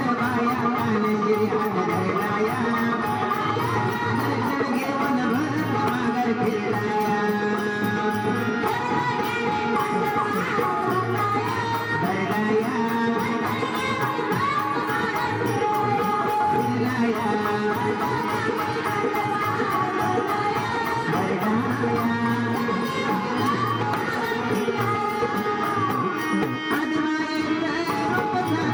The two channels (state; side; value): identical; both; correlation 1.00